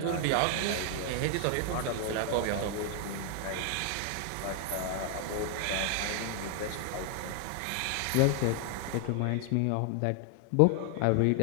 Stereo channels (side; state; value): both; different; correlation 0.00